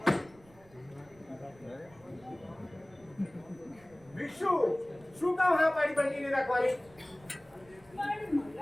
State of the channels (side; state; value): right; noise; rumble, 26 dB below the sound